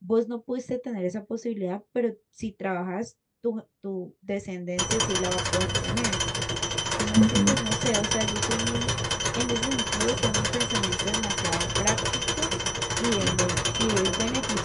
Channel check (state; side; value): identical; both; correlation 1.00